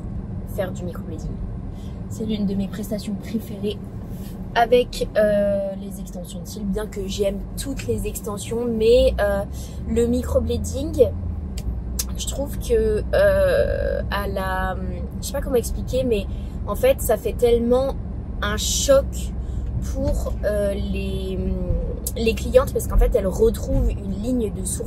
faire du microblading. C'est l'une de mes prestations préférées avec les extensions de cils, bien que j'aime toutes les extensions, mais le microblading, je trouve que je sais pas comment expliquer, mais en fait ça fait tellement un choc pour les clientes parce qu'en fait elles retrouvent une ligne de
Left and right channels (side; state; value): both; identical; correlation 1.00